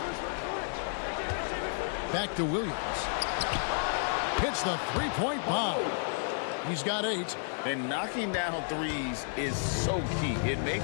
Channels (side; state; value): right; silent; 57 dB below the other